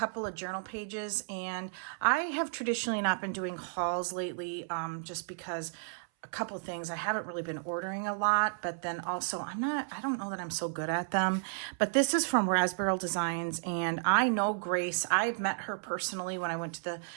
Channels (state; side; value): silent; left; 56 dB below the other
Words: of journal pages, and I have traditionally not been doing hauls lately, just because a couple of things. I haven't really been ordering a lot, but then also I don't know that I'm so good at them. But this is from Raspberyl Designs, and I know Grace. I've met her personally when I went to the